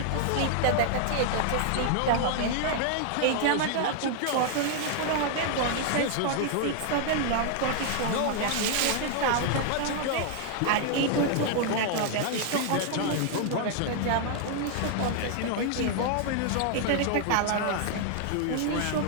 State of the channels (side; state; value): both; different; correlation 0.00